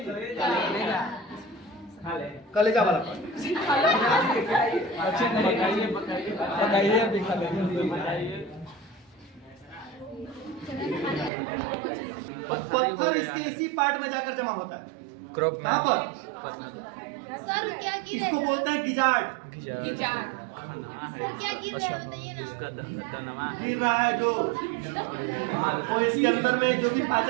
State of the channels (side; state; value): left; drops out; at 11.3 s